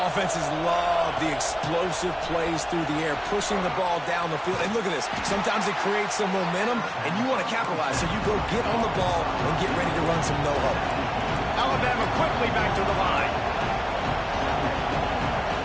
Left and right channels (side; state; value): both; identical; correlation 1.00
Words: love the explosive plays through the air, pushing the ball down the field. And look at this. Sometimes it creates some momentum, and you want to capitalize. So you go get on the ball and get ready to run some no-huddle. Alabama quickly back to the line.